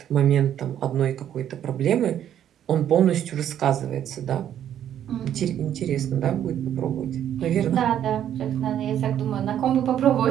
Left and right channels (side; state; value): left; quieter; 10.4 dB